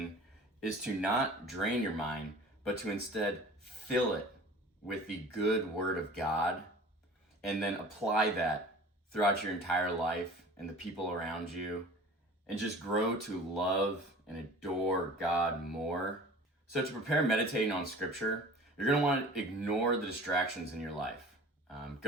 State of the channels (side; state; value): both; normal; correlation 0.43